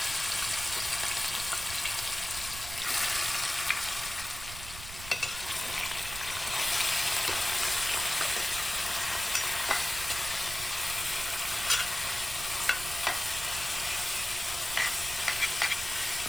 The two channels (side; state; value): right; noise; rumble, 12 dB below the sound